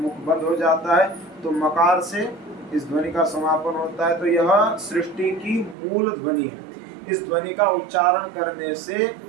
बंद हो जाता है, तो मकार से इस ध्वनि का समापन होता है। तो यह सृष्टि की मूल ध्वनि है। इस ध्वनि का उच्चारण करने से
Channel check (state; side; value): drops out; left; at 5.8 s